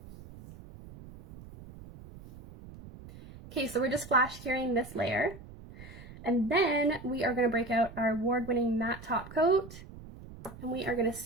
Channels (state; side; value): noise; right; rumble, 16 dB below the sound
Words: Okay, so we're just flash curing this layer, and then we are going to break out our award-winning matte top coat, and we are going to